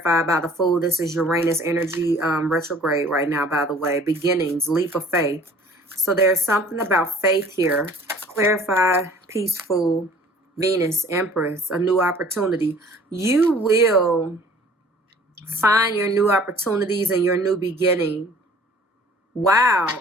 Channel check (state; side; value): normal; both; correlation 0.51